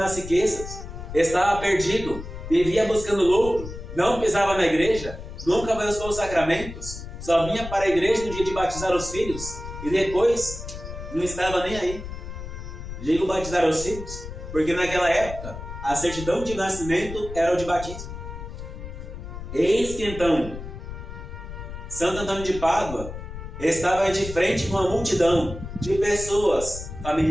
riquezas, estava perdido, vivia buscando lucro, não pisava na igreja, nunca buscou os sacramentos, só vinha para a igreja no dia de batizar os filhos, e depois não estava nem aí. Digo batizar os filhos, porque naquela época a certidão de nascimento era o de batismo. Eis que então Santo Antônio de Pádua estava de frente com uma multidão de pessoas,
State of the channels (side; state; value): left; noise; rumble, 10 dB below the sound